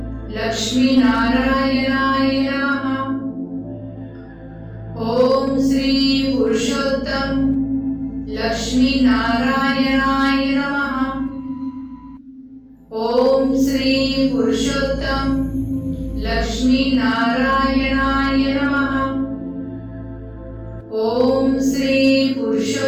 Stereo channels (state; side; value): identical; both; correlation 1.00